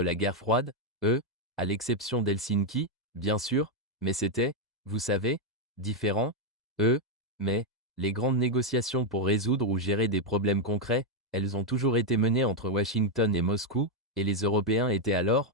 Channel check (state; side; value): normal; both; correlation 0.01